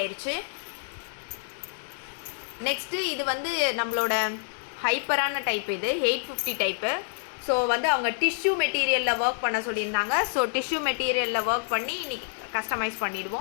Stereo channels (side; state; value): right; silent; digital silence